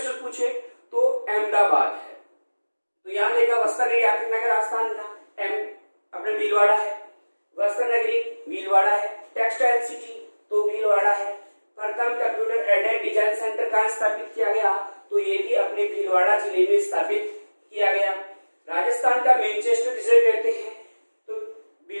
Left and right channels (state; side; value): inverted; both; correlation -1.00